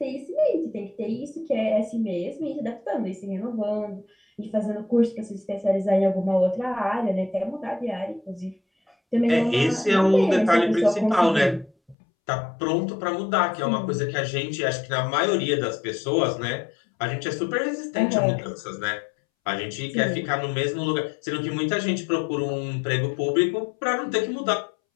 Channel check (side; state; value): right; drops out; at 12.0 s